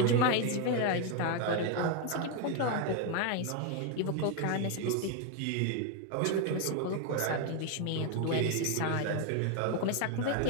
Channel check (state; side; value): different; both; correlation 0.01